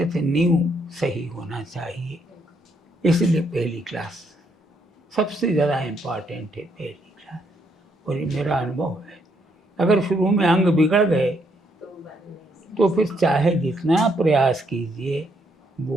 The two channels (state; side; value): normal; both; correlation 0.73